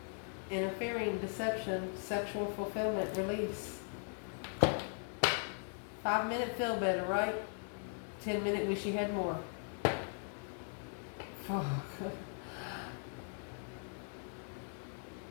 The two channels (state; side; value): silent; right; 52 dB below the other